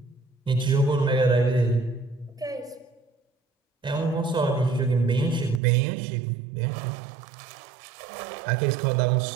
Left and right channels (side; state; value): left; drops out; at 5.6 s